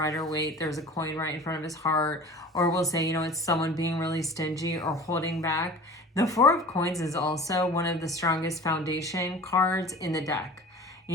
there's a coin right in front of his heart. Or we'll say, you know, it's someone being really stingy or holding back. The Four of Coins is also one of the strongest foundation cards in the deck.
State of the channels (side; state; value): both; normal; correlation 0.41